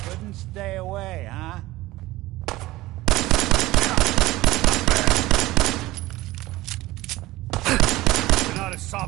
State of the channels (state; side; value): quieter; left; 18.1 dB